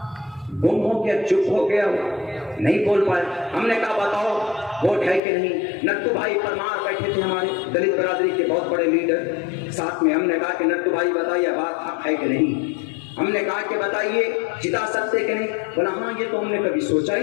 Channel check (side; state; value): right; drops out; at 5.2 s